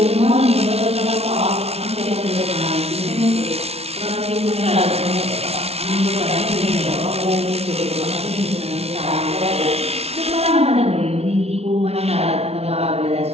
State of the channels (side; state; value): left; late; 0.30 ms